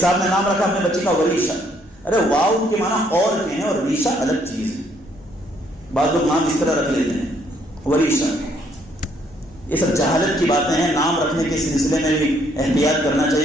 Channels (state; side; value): normal; both; correlation 0.68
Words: نے نام رکھا اپنے بچے کا وریشہ۔ ارے واو کے معنی اور کے ہیں اور ریشہ الگ چیز ہے، بعض لوگ نام اس طرح رکھ لیتے ہیں وریشہ۔ یہ سب جہالت کی باتیں ہیں، نام رکھنے کے سلسلے میں بھی احتیاط کرنا